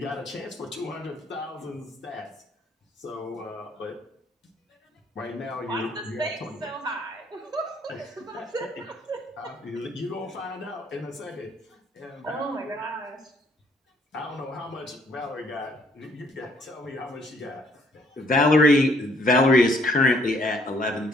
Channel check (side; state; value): both; normal; correlation 0.65